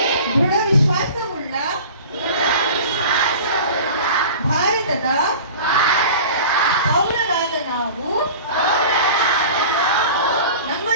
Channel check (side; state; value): both; inverted; correlation -0.39